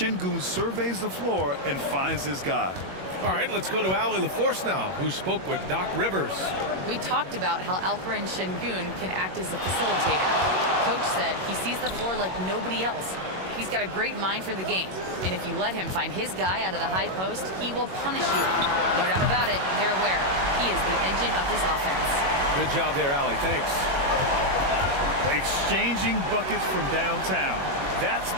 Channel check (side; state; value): left; late; 21 ms